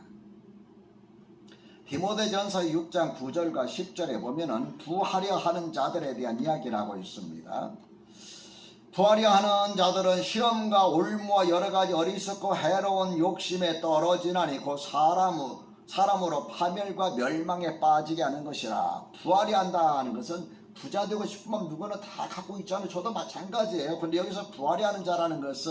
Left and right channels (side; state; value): both; identical; correlation 1.00